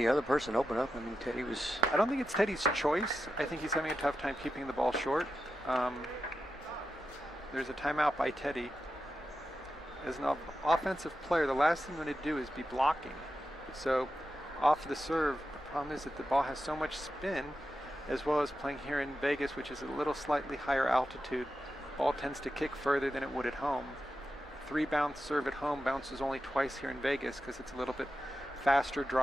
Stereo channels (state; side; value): normal; both; correlation 0.90